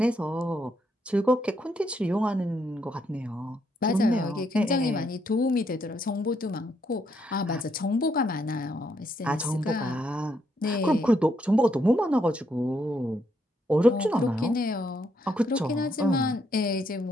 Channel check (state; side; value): normal; both; correlation 0.75